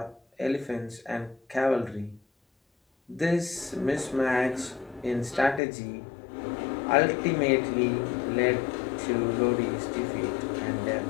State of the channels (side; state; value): right; drops out; at 5.6 s